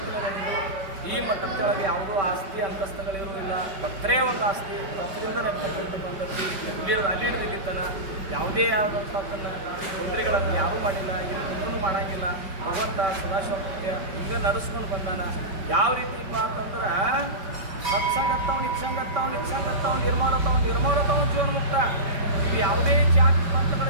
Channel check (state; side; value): late; left; 5.2 ms